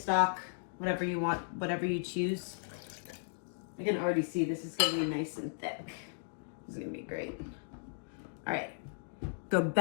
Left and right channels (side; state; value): right; silent; digital silence